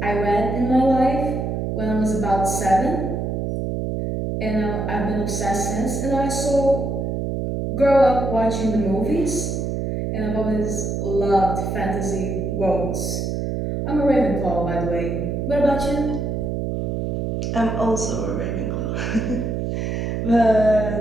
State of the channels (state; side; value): noise; right; hum, 1 dB below the sound